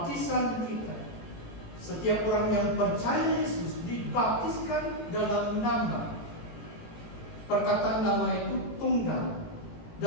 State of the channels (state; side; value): late; right; 18 ms